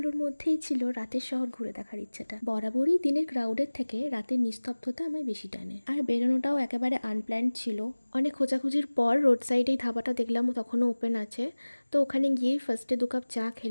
মধ্যেই ছিল রাতের শহর ঘুরে দেখার ইচ্ছেটা। বরাবরই দিনের ক্রাউডের থেকে রাতের নিস্তব্ধতা আমায় বেশি টানে। আর বেরোনোটাও একেবারে আনপ্ল্যান্ড ছিল। অনেক খোঁজাখুঁজির পর রোড সাইডেই ধাবাটা দেখলাম, তখনও ওপেন আছে। তো ওখানে গিয়েই ফার্স্টে 2 কাপ চা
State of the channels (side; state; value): both; inverted; correlation -1.00